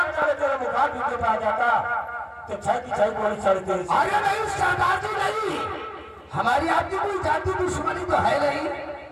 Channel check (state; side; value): identical; both; correlation 1.00